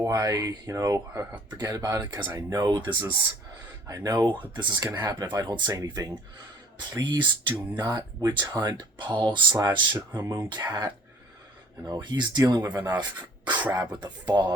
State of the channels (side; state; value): both; normal; correlation 0.53